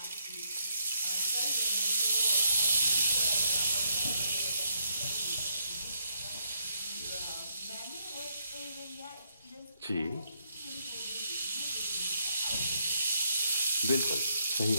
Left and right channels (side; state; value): both; inverted; correlation -0.74